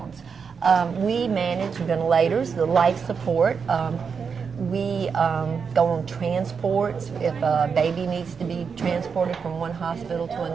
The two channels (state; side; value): quieter; left; 6.0 dB